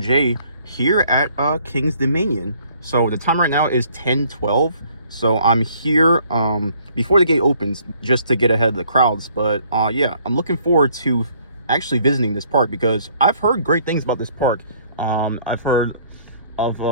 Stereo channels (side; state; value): both; inverted; correlation -0.61